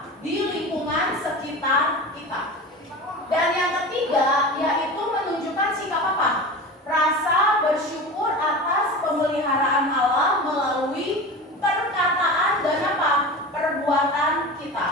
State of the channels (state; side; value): normal; both; correlation 0.30